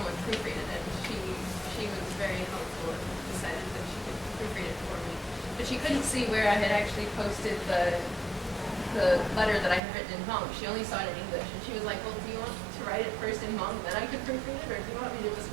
proofread it, and she was very helpful and decided that she could proofread it for me. But she couldn't see where I had actually posted the letter that I had written in Hmong. She only saw it in English, and she was like, well, do you want to write it first in Hmong, then I could proofread it, or do you want me to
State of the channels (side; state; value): left; drops out; at 9.8 s